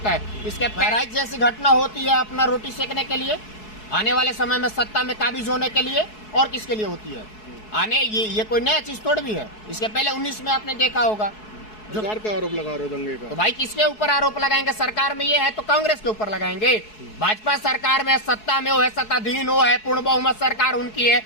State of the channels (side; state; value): right; late; 4.7 ms